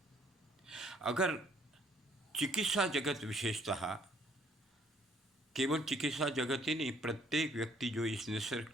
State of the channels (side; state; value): both; normal; correlation 0.63